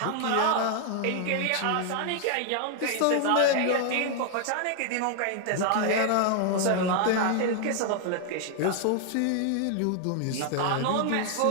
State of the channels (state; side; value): different; both; correlation 0.00